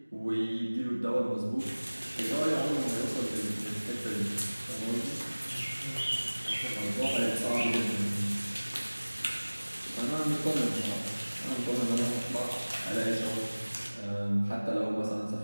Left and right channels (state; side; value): inverted; both; correlation -1.00